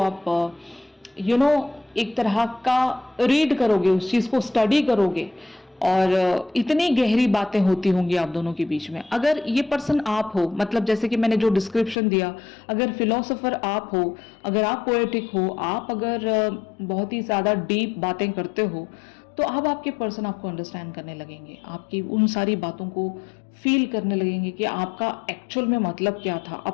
एक तरह का रीड करोगे, उस चीज़ को स्टडी करोगे, और इतनी गहरी बातें होती होंगी आप दोनों के बीच में। अगर ये पर्सन आप हो, मतलब जैसे कि मैंने जो डिस्क्रिप्शन दिया, अगर फिलोसोफर आप हो, अगर आप पोएटिक हो, आप अगर बहुत ही ज़्यादा डीप बातें करते हो, तो अब आपके पर्सन आपको अंडरस्टैंड करने लगेंगे, आपकी उन सारी बातों को फील करने लगेंगे कि आपका एक्चुअल में मतलब क्या था,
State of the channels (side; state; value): right; drops out; at 12.0 s